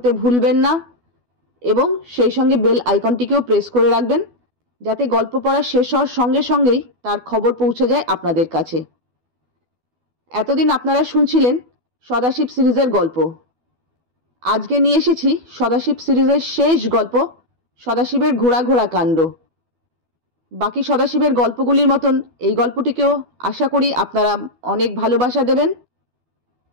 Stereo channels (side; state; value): left; late; 12 ms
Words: भूलबेन ना एबं सेई संगे बेल आइकनटिकेও प्रेस करे राखबेन जाते गल्प पढ़ा शेष हওয়ার संगे संगेई तार खबर पौঁছে যায় आपनादेर काছে। एतदिन आपनारा शुनছিলেন सदाशिव सिरिजेर गल्प। आज के निये एसेছি सदाशिव सिरिजेर शेष गल्प सदाशिवेर घोड़ा घोड़ा कांड। बाकी सदाशिवेर गल्पगुलिर मतन এই গল্পটিকেও आशा करी आपनारा अनेक भालोबासा देবেন।